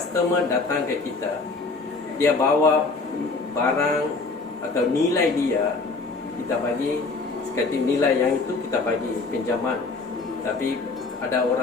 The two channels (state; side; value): quieter; right; 3.9 dB